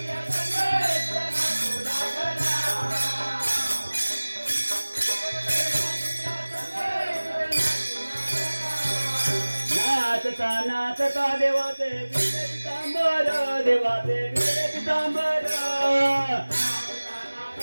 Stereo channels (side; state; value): both; inverted; correlation -1.00